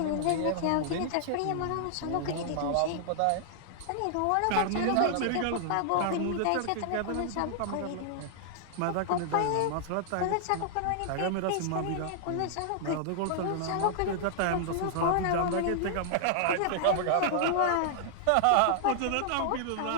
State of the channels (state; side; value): different; both; correlation -0.01